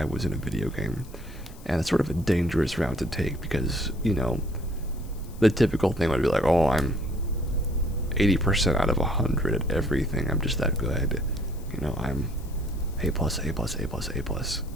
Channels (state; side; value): noise; left; hiss, 23 dB below the sound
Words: was in a video game. And it's sort of a dangerous route to take because, the typical thing would be like, oh, I'm 80% out of 100 at everything. I'm just that good. I'm A plus, A plus, A plus, A plus.